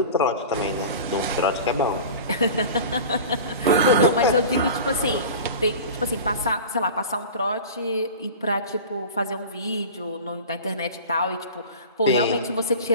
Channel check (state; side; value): inverted; both; correlation -0.35